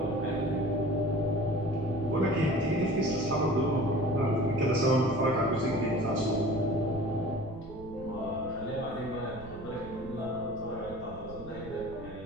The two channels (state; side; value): noise; right; rumble, 15 dB below the sound